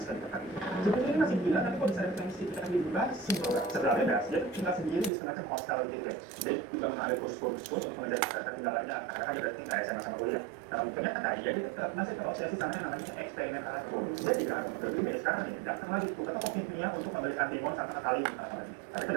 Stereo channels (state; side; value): drops out; left; at 5.1 s